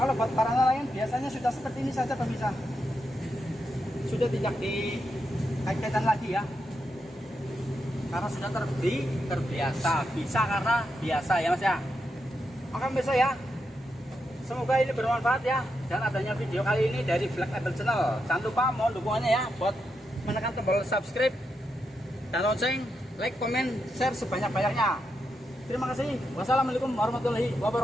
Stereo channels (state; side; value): normal; both; correlation 0.84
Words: buat barang lain biasanya sudah seperti ini saja pemirsa. Sudah tidak dikaitkan lagi ya. Karena sudah terbiasa. Bisa karena biasa ya Mas ya. Oke pemirsa ya. Semoga ini bermanfaat ya, dan adanya video kali ini dari Black Label Channel. Jangan lupa mohon dukungannya ya buat menekan tombol subscribe dan lonceng, like, komen, share sebanyak-banyaknya. Terima kasih. Wassalamualaikum warahmatullahi